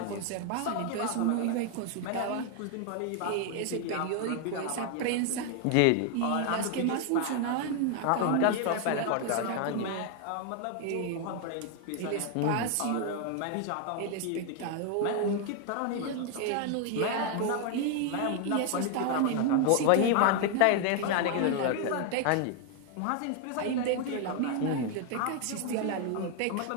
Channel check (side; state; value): both; different; correlation 0.01